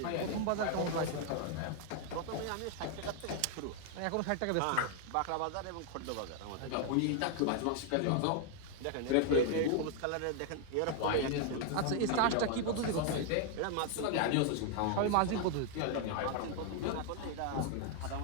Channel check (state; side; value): different; both; correlation 0.00